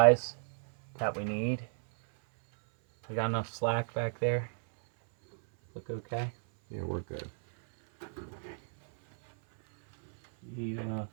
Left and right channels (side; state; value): left; silent; 56 dB below the other